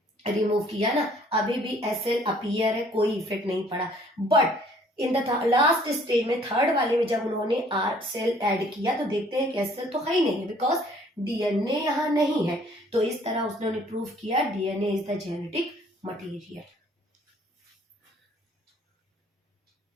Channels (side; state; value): both; normal; correlation 0.58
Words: रिमूव किया ना, अभी भी एस सेल अपीयर है, कोई इफेक्ट नहीं पड़ा। But in the last stage में, थर्ड वाले में जब उन्होंने आर सेल ऐड किया तो देखते हैं कि एस सेल तो है ही नहीं है, बिकॉज डीएनए यहाँ नहीं है। तो इस तरह उसने प्रूव किया DNA is the genetic material.